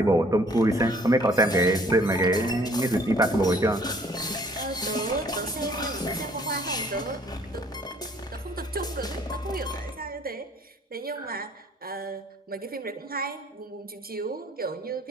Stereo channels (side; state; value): both; normal; correlation 0.59